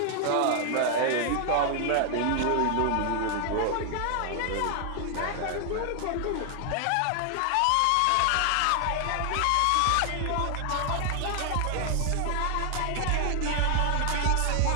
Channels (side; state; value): both; different; correlation 0.00